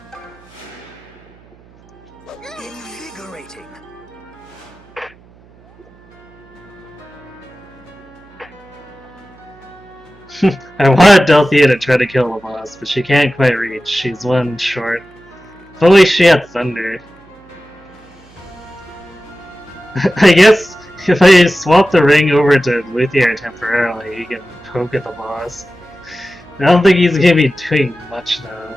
Invigorating. I wanted Delthea to try to kill the boss, but she can't quite reach. She's one short. If only she had thunder. I guess if I swap the ring over to Luthier temporarily, he can poke at the boss. I don't think he's gonna be doing much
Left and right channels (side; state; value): right; noise; hum, 27 dB below the sound